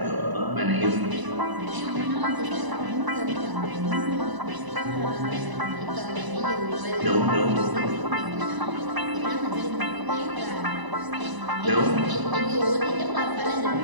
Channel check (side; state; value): left; late; 1.0 ms